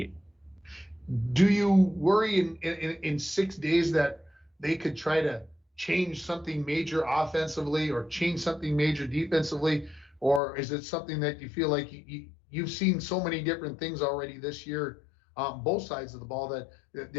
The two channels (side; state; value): right; drops out; at 10.4 s